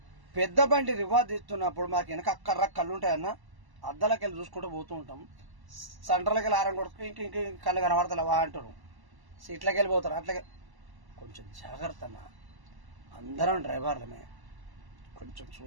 పెద్ద బండి రివాజ్ తీస్తున్నప్పుడు మాకు వెనక అక్కర్ర కళ్ళు ఉంటాయన్న, అద్దాలకి వెళ్ళి చూసుకుంటూ పోతూ ఉంటాం. సెంటర్లకి వెళ్ళి ఆరం కొడుకు ఇంక కళ్ళు కనబడతలేవా అంటారు. సీట్లకి వెళ్ళిపోతారు. అట్లాగే కొంచెం జాగ్రత్త అన్న, అందరం డ్రైవర్లమే, కొంచెం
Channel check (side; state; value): left; late; 1.0 ms